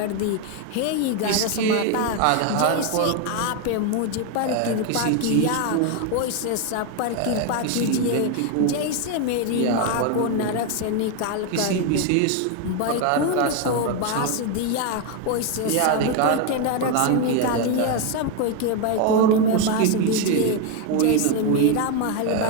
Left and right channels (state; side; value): different; both; correlation 0.01